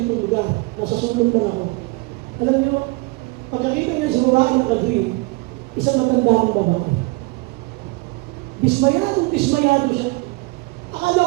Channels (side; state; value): left; quieter; 24.1 dB